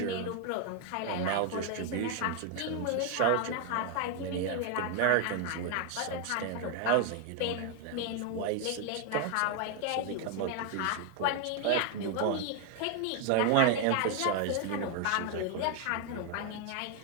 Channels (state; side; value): different; both; correlation 0.01